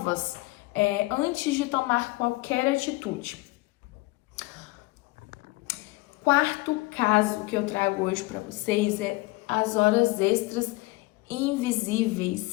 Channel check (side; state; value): right; quieter; 22.2 dB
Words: antes de tomar qualquer atitude. Quarto caso que eu trago hoje para vocês é as horas extras